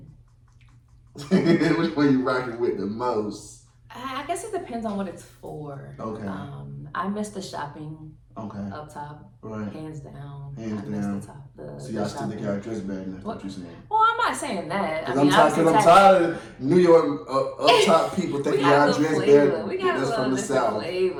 Which one you rocking with the most? I guess it depends on what it's for. Okay. I miss the shopping. Okay. Up top. Right. Hands down. Hands I down. miss the top. So y'all still think y'all dress better than that's what you're saying? Well, I'm not saying that. Because I'm tired of New York up top people thinking y'all dress better. We got a from the little South.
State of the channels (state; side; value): identical; both; correlation 1.00